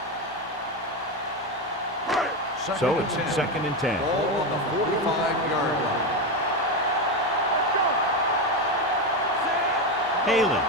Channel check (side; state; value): both; normal; correlation 0.13